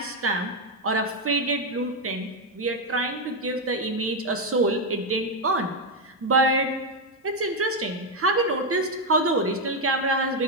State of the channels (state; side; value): normal; both; correlation 0.04